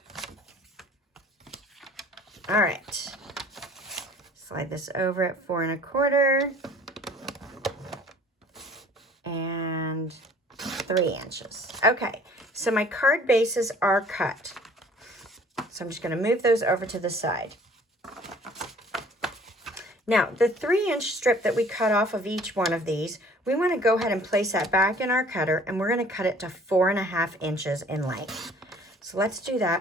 All right. Slide this over at 4 1/4 and 3 inches. Okay, so my card bases are cut. So I'm just going to move those over to the side. Now, the 3 inch strip that we cut off of each one of these, we want to go ahead and place that back in our cutter, and we're going to cut it to 4 1/2 inches in length. So let's do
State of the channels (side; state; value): both; normal; correlation 0.52